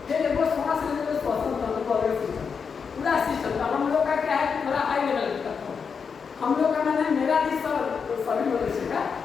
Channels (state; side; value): quieter; right; 6.0 dB